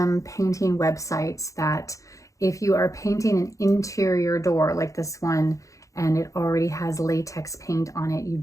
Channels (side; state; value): right; late; 0.16 ms